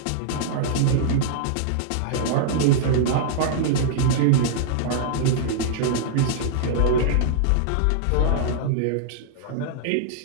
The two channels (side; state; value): both; different; correlation -0.02